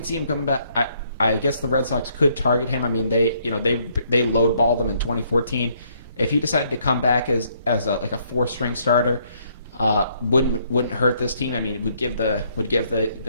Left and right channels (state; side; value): inverted; both; correlation -0.69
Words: see him coming back. I guess the Red Sox could target him. I mean, they lowballed him in 2014. If he decided to come back as a 4-string starter, wouldn't hurt this team. I mean, it would give